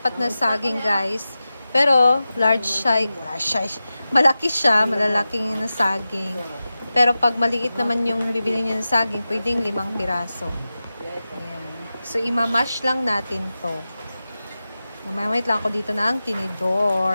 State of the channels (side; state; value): both; inverted; correlation -0.94